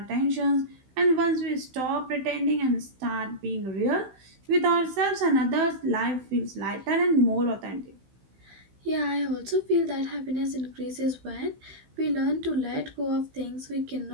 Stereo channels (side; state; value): left; late; 15 ms